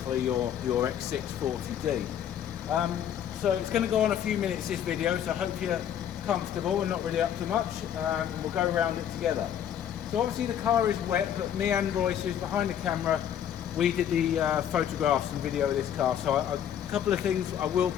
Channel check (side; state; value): right; quieter; 9.7 dB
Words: your x640d. So it's going to go on a few minutes, this video, so I hope you're comfortable and not really up to much, and we'll go around it together. So obviously the car is wet, but me and Royce, who's behind the camera, we did the photographs and video of this car, so a couple of things I will